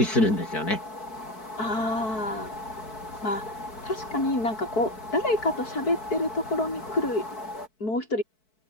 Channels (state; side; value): late; right; 4.6 ms